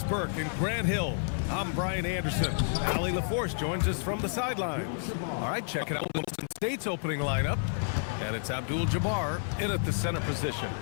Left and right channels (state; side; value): silent; right; 58 dB below the other